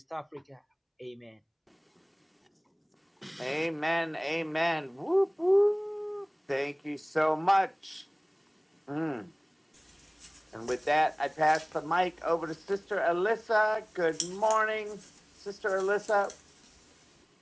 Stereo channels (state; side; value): identical; both; correlation 1.00